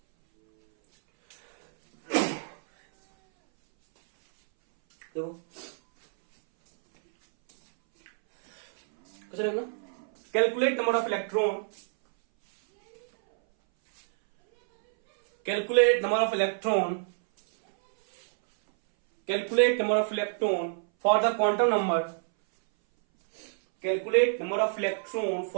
देखो कैसे लगना, calculate number of electron, calculate number of electron, calculate number of electron for the quantum number, calculate number of electron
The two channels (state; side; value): silent; left; 60 dB below the other